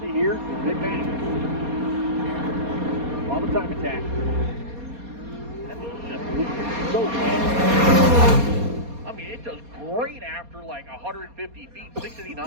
see here. Big bang. On the time attack. That thing's just moving so fast. I mean, it does great after like 150 feet,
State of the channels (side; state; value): left; late; 4.2 ms